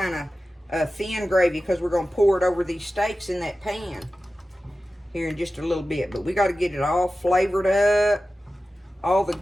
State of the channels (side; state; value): both; normal; correlation 0.94